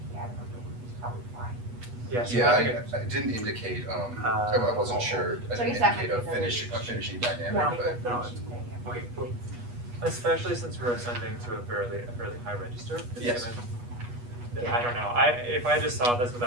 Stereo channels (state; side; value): late; left; 8.3 ms